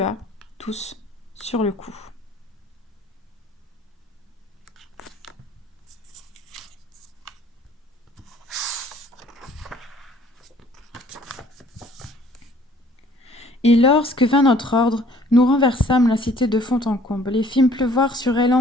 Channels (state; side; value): normal; both; correlation 0.56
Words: tous, sur le coup. Et lorsque vint notre ordre, nous renversâmes la cité de fond en comble et fîmes pleuvoir sur elle en